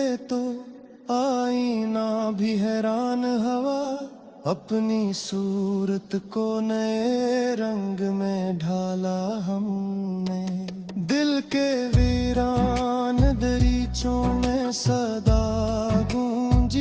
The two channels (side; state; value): both; identical; correlation 1.00